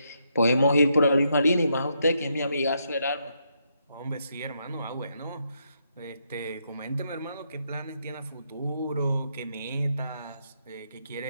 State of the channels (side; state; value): both; inverted; correlation -0.78